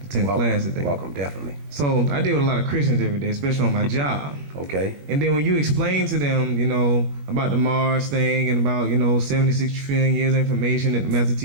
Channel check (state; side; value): late; left; 21 ms